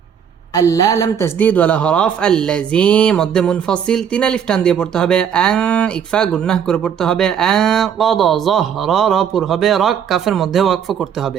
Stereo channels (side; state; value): left; quieter; 8.2 dB